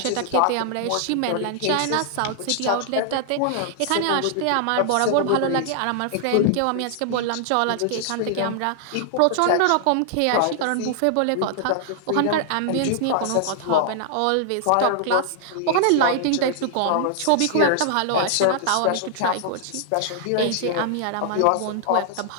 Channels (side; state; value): both; different; correlation -0.01